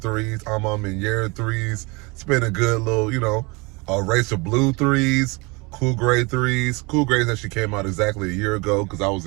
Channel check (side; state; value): left; quieter; 27.2 dB